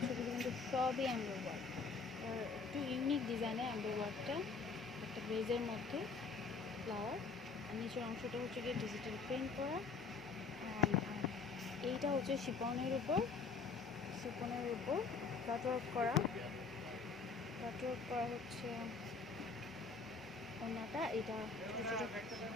এগুলো কিন্তু সবই এমব্রয়ডারি ওয়ার্ক। আর একটু ইউনিক ডিজাইনের এমব্রয়ডারিটা, একটা বেজের মধ্যে ফ্লাওয়ার, আর নিচের অংশটা হচ্ছে গিয়ে ডিজিটাল প্রিন্ট করা। আর এইটা হচ্ছে শিপনের উপর কাটওয়ার্ক করা হচ্ছে ওনাটা। এটা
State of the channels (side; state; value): right; quieter; 4.7 dB